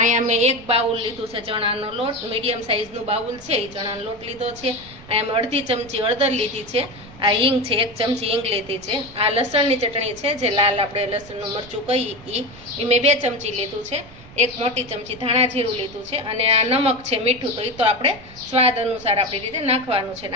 મેં એક બાઉલ લીધું છે ચણાનો લોટ, મીડિયમ સાઇઝનું બાઉલ છે. એ ચણાનો લોટ લીધો છે. અહીંયા મેં અડધી ચમચી હળદર લીધી છે. આ હિંગ છે, 1 ચમચી હિંગ લીધી છે. આ લસણની ચટણી છે, જે લાલ આપણે લસણનું મરચું કહીએ એ મેં 2 ચમચી લીધું છે. 1 મોટી ચમચી ધાણા જીરું લીધું છે. અને આ નમક છે, મીઠું, તો એ તો આપણે સ્વાદ અનુસાર આપણી રીતે નાખવાનું છે.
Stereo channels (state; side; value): noise; right; rumble, 20 dB below the sound